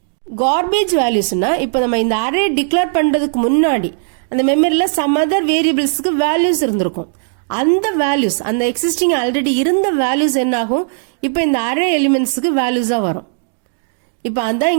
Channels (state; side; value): silent; left; digital silence